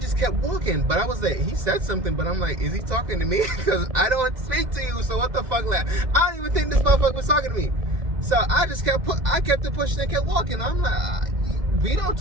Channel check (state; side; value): late; left; 2.0 ms